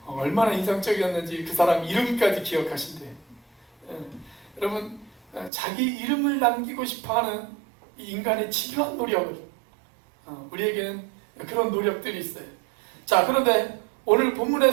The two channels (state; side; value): drops out; left; at 5.5 s